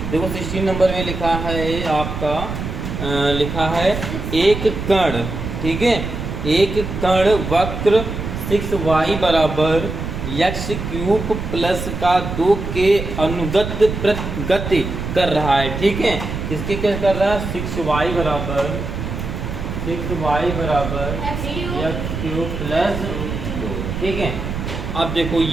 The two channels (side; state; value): right; noise; rumble, 5 dB below the sound